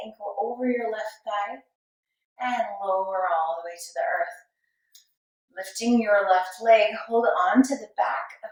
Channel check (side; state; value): both; identical; correlation 1.00